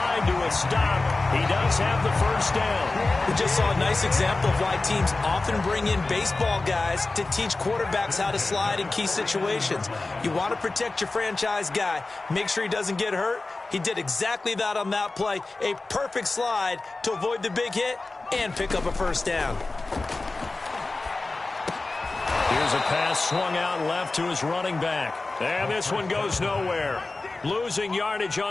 to a stop. He does have the first down. We just saw a nice example of why teams often bring in baseball guys to teach quarterbacks how to slide in key situations. You want to protect your franchise guy. Make sure he doesn't get hurt. He did exactly that on that play. A perfect slide to avoid the big hit and pick up a first down. Here's a pass swung out left to his running back. And this one goes nowhere. Losing yardage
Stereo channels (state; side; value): quieter; right; 3.3 dB